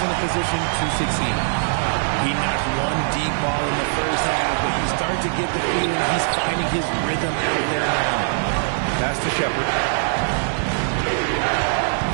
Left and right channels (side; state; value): left; silent; digital silence